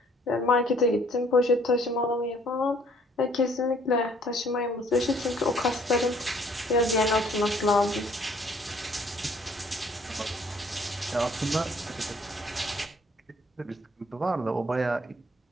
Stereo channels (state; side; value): normal; both; correlation 0.60